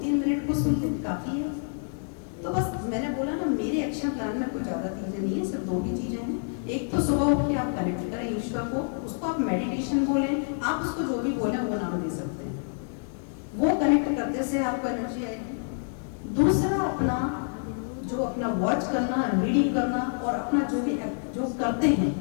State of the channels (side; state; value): right; silent; 60 dB below the other